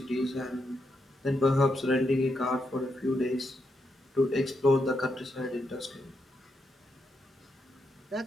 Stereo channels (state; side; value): normal; both; correlation 0.82